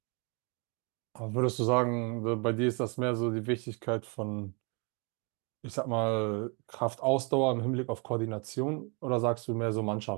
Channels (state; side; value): quieter; left; 33.8 dB